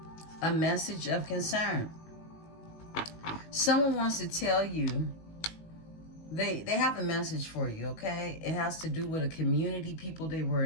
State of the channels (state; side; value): late; right; 18 ms